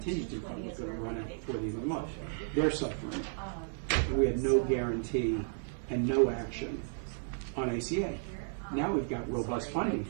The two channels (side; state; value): left; silent; digital silence